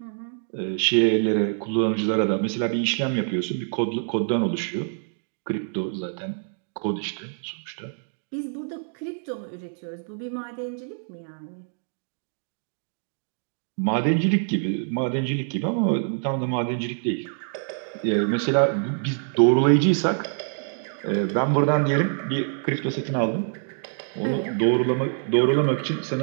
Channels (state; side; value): silent; left; digital silence